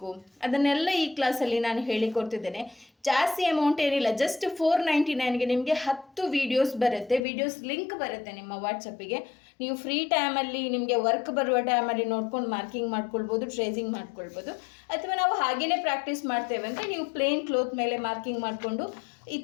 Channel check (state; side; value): drops out; right; at 7.2 s